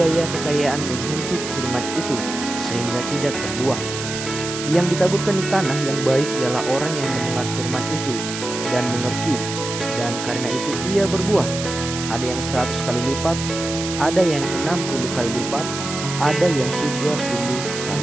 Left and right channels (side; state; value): right; noise; hiss, 7 dB below the sound